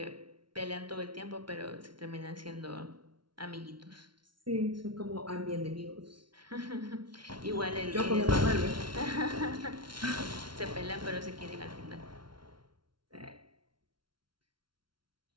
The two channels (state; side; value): late; left; 0.73 ms